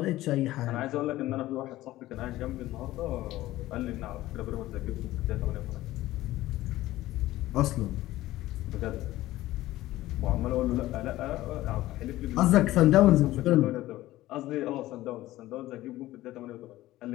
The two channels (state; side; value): quieter; right; 16.2 dB